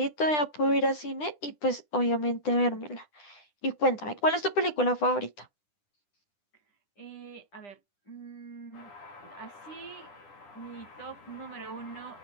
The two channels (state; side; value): late; right; 10 ms